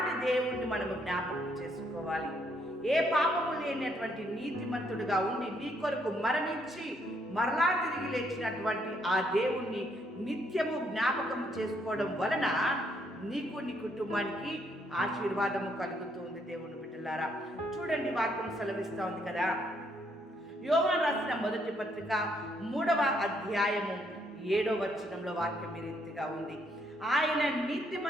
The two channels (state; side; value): normal; both; correlation 0.72